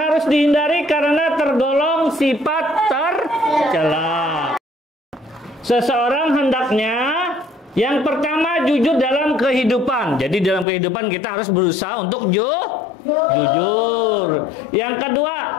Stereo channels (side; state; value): right; drops out; at 10.7 s